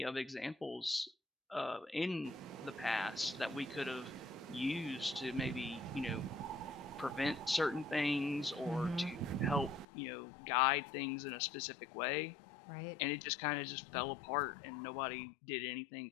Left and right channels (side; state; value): right; drops out; at 9.9 s